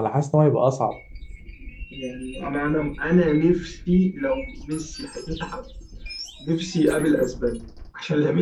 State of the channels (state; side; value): identical; both; correlation 1.00